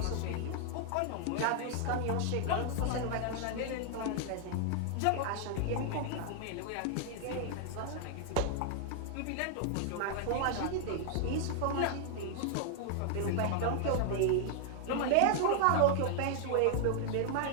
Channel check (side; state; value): both; different; correlation 0.00